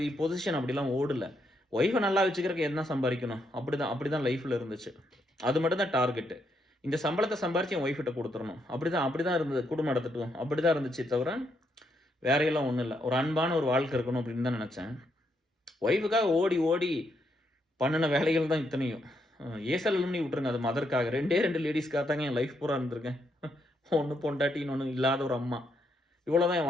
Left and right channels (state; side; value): normal; both; correlation 0.77